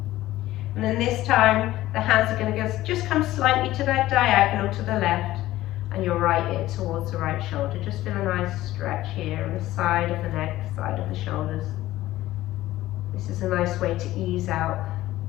And then this time, the hands are going to just come slightly to that diagonal to the left, and your right ear towards the right shoulder. Just feel a nice stretch here on the side of the neck, side of the shoulders. This is a nice way to ease out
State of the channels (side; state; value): right; quieter; 15.7 dB